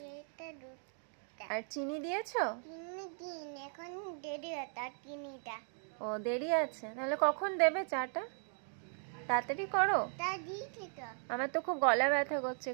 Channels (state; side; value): silent; left; 53 dB below the other